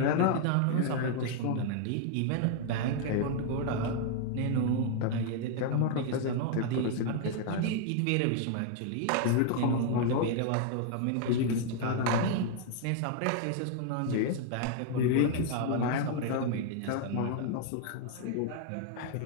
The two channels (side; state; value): both; different; correlation 0.00